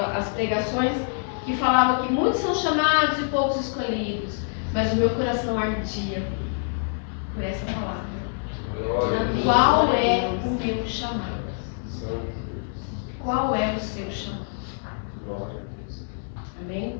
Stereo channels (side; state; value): right; silent; 61 dB below the other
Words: as pregações que falavam que muitos são chamados e poucos escolhidos, mas o meu coração ardia por essa palavra. Qual é o meu chamado? Qual é o seu chamado?